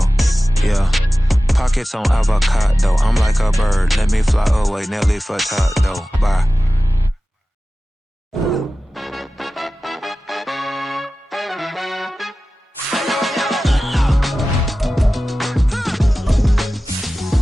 Yeah, pockets on avocado. I'm like a bird. Let me fly away, Nelly Furtado. Bye.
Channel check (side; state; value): both; normal; correlation 0.95